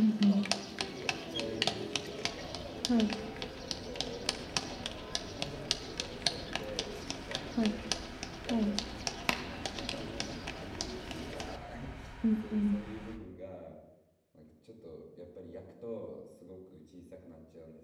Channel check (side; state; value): both; identical; correlation 1.00